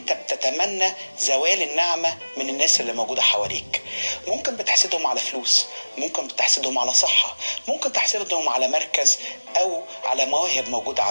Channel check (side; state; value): both; inverted; correlation -1.00